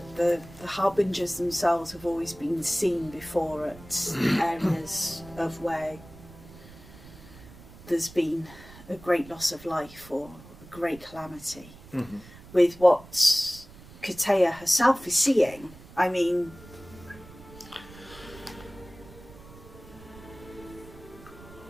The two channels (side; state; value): right; noise; rumble, 19 dB below the sound